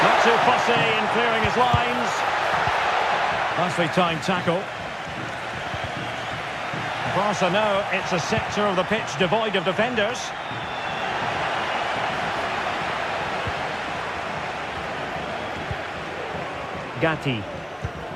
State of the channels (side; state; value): both; identical; correlation 1.00